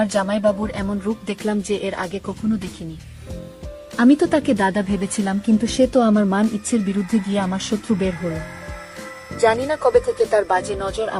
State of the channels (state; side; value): identical; both; correlation 1.00